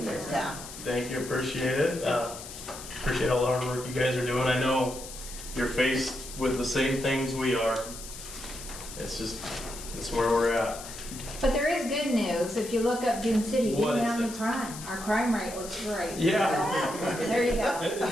Yeah. Thank you, appreciate it. Appreciate all the hard work you guys are doing. I know you're faced with the same things we are. It's where we're at. But there is good news. If you look up Dune City, What even is down the it? crime, our crime rate looks great. Yeah. There you go.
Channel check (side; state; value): left; noise; hiss, 12 dB below the sound